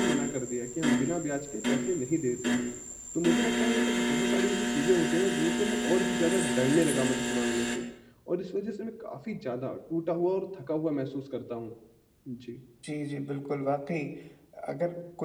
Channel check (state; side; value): identical; both; correlation 1.00